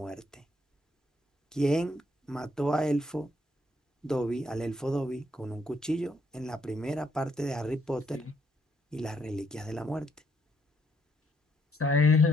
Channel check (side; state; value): both; normal; correlation 0.72